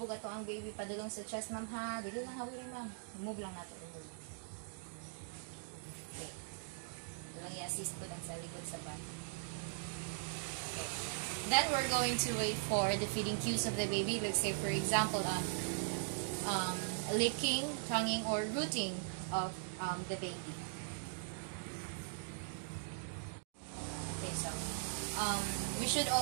ato ang baby padulong sa chest, ma'am, ha? Dili lang hawin, ma'am. Move lang nato. Remove. Okay. Ito lang i-assist ko lang sa likod sa back. Okay. Then, we're going to wait for the feeding cues of the baby. Let's say, for example, licking, tonguing, or rooting of the baby. Okay, so, we should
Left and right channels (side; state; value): left; silent; digital silence